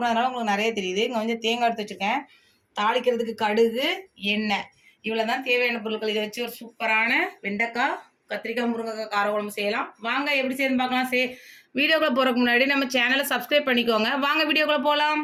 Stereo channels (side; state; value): both; identical; correlation 1.00